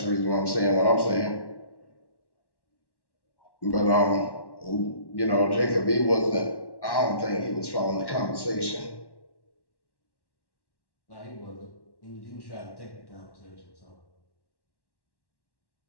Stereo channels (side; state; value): right; late; 1.1 ms